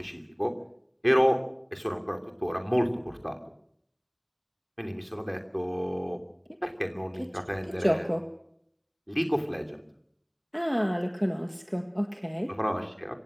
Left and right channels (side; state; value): both; identical; correlation 1.00